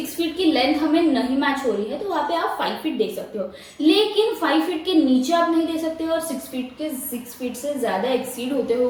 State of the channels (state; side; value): identical; both; correlation 1.00